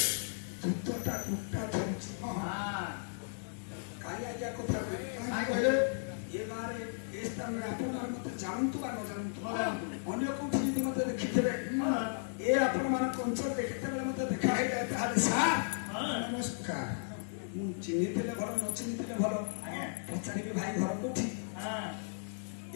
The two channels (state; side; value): silent; right; digital silence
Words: ଯୁଦ୍ଧଟା ଦୁଟା ଧରୁଛି କାଲି ଆଜ୍ଞା କଥା କହିଲେ ଏ ଗାଁରେ ଏ ସ୍ଥାନରେ ଆପଣମାନେ ମତେ ଜାଣନ୍ତୁ ବା ନ ଜାଣନ୍ତୁ ଅନ୍ୟ କୋଉଠି ଯଦି ମତେ ଦେଖିଥିବେ ଏ ଆପଣମାନଙ୍କ ଅଞ୍ଚଳରେ କେତେବେଳେ ମତେ ଦେଖା ହେଇଯାଏ ତାହେଲେ ସାର୍ ନମସ୍କାର ମୁଁ ଚିହ୍ନିଥିଲେ ଭଲ ନ ଚିହ୍ନିଥିଲେ ଭଲ ପଚାରିବି ଭାଇ ଘର କୋଉଠି